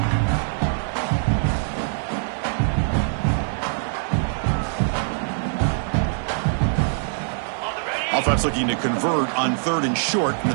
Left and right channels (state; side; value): silent; left; digital silence